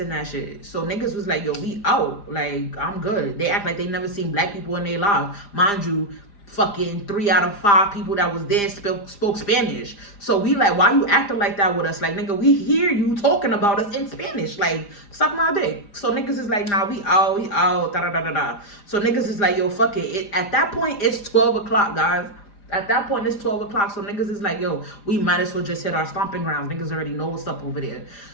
that shit. So niggas was like, yo, we out. Like, I'm good. They act like they never seen black people in their lives. Mind you, fucking 3 out of 5 people that was there spoke Spanish. So we like, why you acting like that with us? Like, nigga, we hear you talking about us in Spanish. Like, suck my dick. So niggas is like, nah, we out, da-da-da-da-da. So niggas is like, yo, fuck it. At that point, it's 12 o'clock, guys. At that point, it's 12 o'clock. So niggas is like, yo, we might as well just hit our stomping grounds. Niggas already know what's up over there.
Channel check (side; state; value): right; late; 5.0 ms